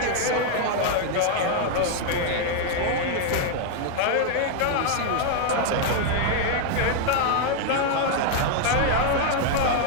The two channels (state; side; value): different; both; correlation 0.00